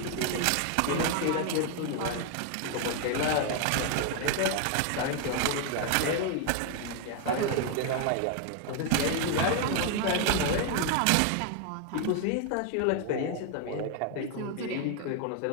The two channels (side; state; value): both; different; correlation 0.01